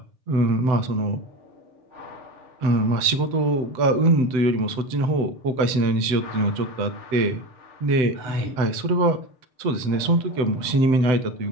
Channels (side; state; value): left; late; 7.8 ms